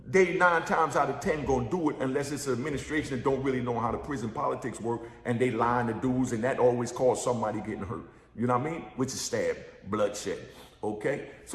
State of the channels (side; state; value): both; identical; correlation 1.00